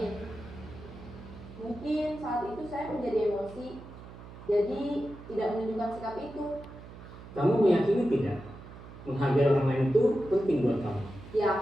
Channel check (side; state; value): right; noise; hum, 16 dB below the sound